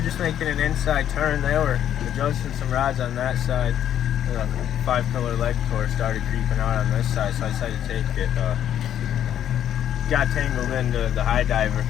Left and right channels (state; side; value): quieter; right; 10.4 dB